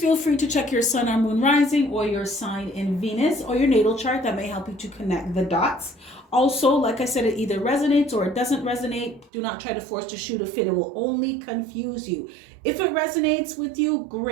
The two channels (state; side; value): drops out; left; at 9.3 s